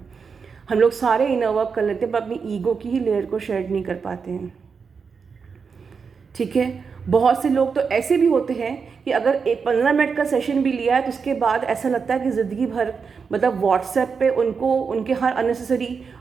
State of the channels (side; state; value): left; quieter; 5.6 dB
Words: हम लोग सारे इनर वर्क कर लेते हैं पर अपनी ईगो की ही लेयर को शेड नहीं कर पाते हैं, ठीक है। बहुत से लोग तो ऐसे भी होते हैं कि अगर एक 15 मिनट का सेशन भी लिया है तो उसके बाद ऐसा लगता है कि ज़िंदगी भर मतलब व्हाट्सएप पे उनको उनके हर अननेसेसरी